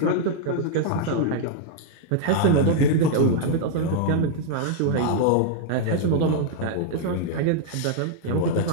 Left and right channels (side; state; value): both; different; correlation -0.01